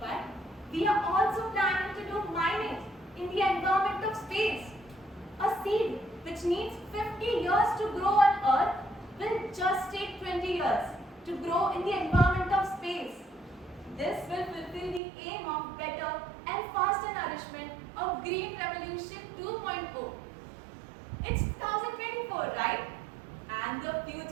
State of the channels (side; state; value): left; drops out; at 15.0 s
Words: we are also planning to do mining in the environment of space. A seed which needs 50 years to grow on Earth, will just take 20 years to grow in the environment of space. This will fulfill the aim of better and faster nourishment of Green Revolution 2.0. It's 2024, right? And the